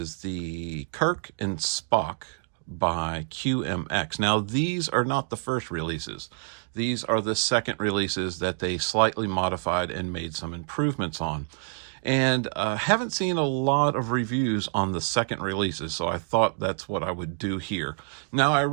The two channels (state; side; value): silent; left; digital silence